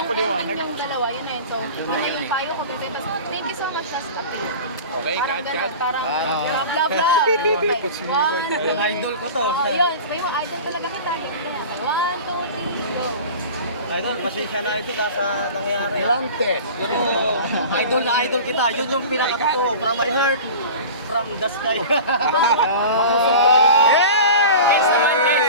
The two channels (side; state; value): both; inverted; correlation -0.36